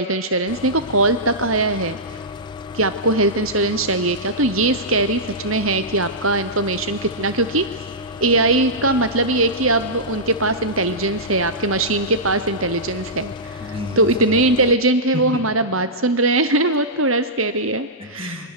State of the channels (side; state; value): both; normal; correlation -0.14